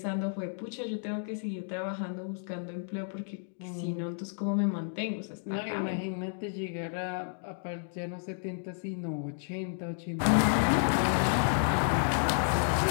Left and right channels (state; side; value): silent; right; digital silence